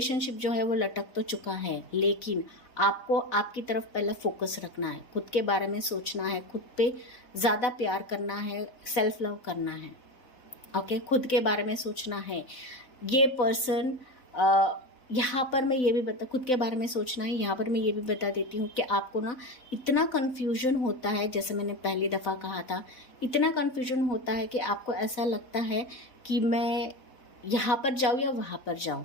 जो है वो लटक तो चुका है, लेकिन आपको आपकी तरफ पहले फोकस रखना है, खुद के बारे में सोचना है, खुद पे ज़्यादा प्यार करना है, सेल्फ लव करना है। ओके, खुद के बारे में सोचना है। ये पर्सन यहाँ पर मैं ये भी खुद के बारे में सोचना है। यहाँ पर मैं ये भी बता देती हूँ कि आपको ना इतना कन्फ्यूजन होता है, जैसे मैंने पहली दफ़ा कहा था, इतना कन्फ्यूजन होता है कि आपको ऐसा लगता है कि मैं यहाँ पर जाऊँ या वहाँ पर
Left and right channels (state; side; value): late; right; 4.0 ms